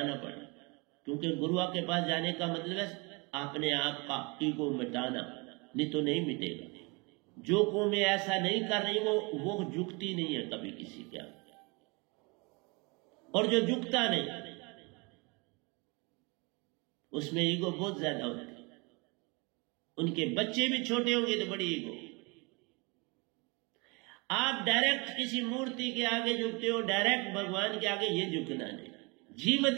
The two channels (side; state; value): left; quieter; 29.0 dB